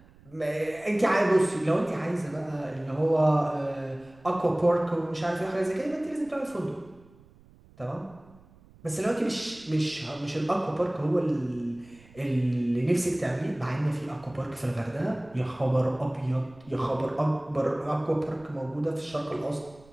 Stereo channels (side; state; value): right; noise; rumble, 26 dB below the sound